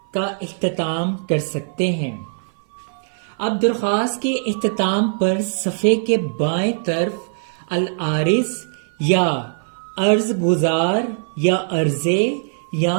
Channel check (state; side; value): silent; left; 57 dB below the other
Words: کا اختتام کر سکتے ہیں۔ اب درخواست کے اختتام پر صفحے کے بائیں طرف العارض یا عرض گزار یا عرضے یا